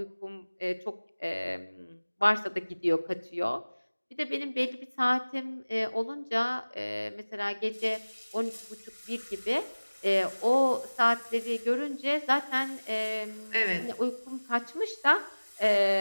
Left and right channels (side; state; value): both; inverted; correlation -1.00